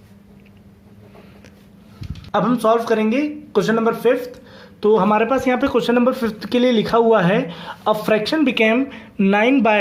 अब हम सॉल्व करेंगे क्वेश्चन नंबर 5। तो हमारे पास यहाँ पे क्वेश्चन नंबर 5 के लिए लिखा हुआ है a fraction became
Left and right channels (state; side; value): identical; both; correlation 1.00